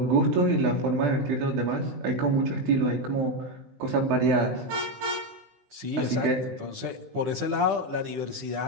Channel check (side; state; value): left; late; 16 ms